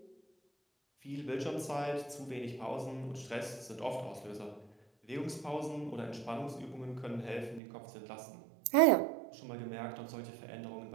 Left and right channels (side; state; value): left; drops out; at 7.6 s